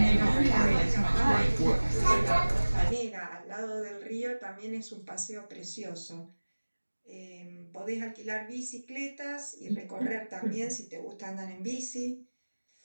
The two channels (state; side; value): inverted; both; correlation -1.00